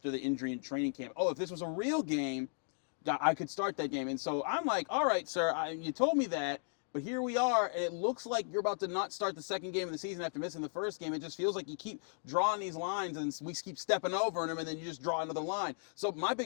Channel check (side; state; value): right; silent; digital silence